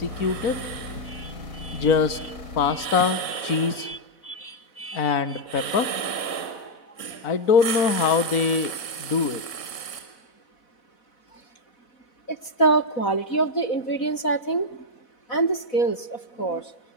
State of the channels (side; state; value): right; late; 4.1 ms